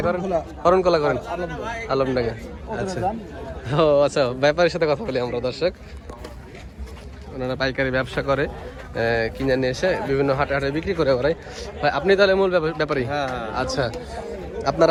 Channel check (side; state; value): both; identical; correlation 1.00